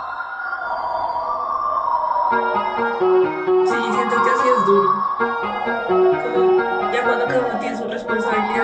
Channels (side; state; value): both; identical; correlation 1.00